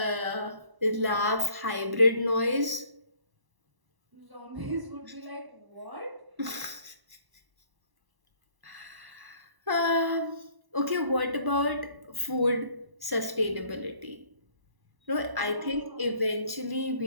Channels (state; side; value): late; left; 1.0 ms